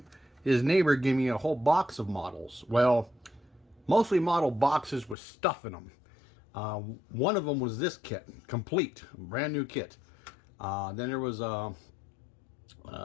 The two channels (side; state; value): right; drops out; at 5.2 s